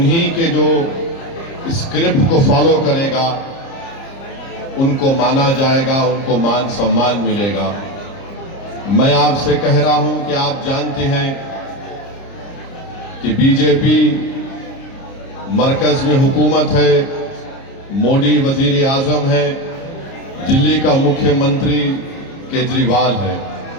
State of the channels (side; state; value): right; late; 30 ms